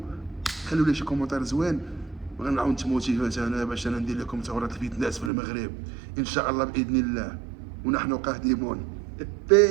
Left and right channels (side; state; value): left; drops out; at 5.3 s